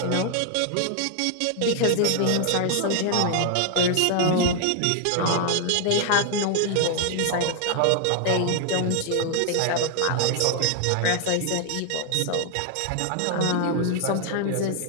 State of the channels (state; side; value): different; both; correlation 0.00